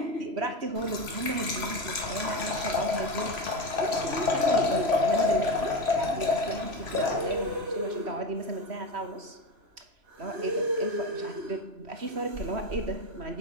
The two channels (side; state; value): left; late; 3.0 ms